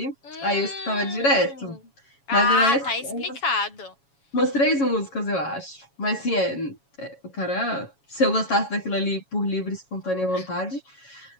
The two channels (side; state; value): right; late; 7.2 ms